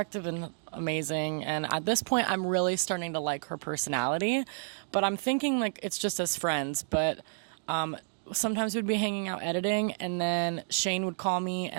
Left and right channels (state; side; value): silent; left; digital silence